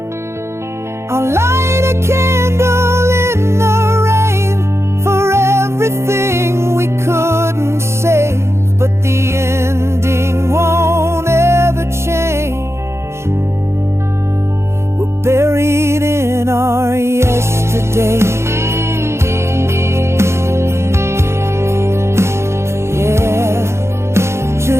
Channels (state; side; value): late; left; 0.13 ms